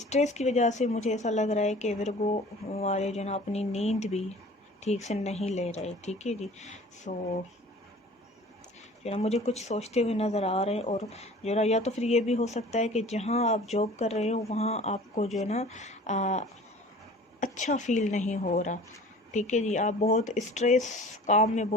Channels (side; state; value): both; normal; correlation 0.45